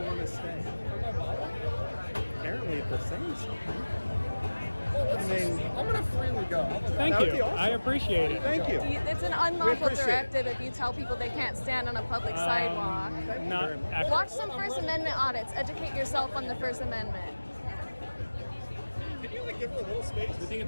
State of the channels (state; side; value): inverted; both; correlation -1.00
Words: want to stay? Apparently, if they're saying something. I mean, I'm gonna freely go. Thank That would you. be awesome. I appreciate it. Thank you. It's an We unlawful appreciate directive if you tell people they can't stand on a public sidewalk. Not actually. Watch some First Amendment audits. Educate yourself on the First Amendment. Can you like give her a little space?